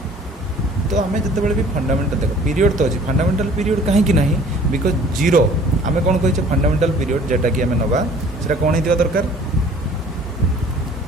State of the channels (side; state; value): both; normal; correlation 0.52